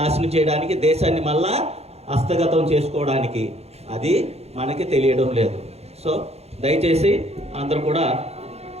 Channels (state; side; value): late; left; 0.30 ms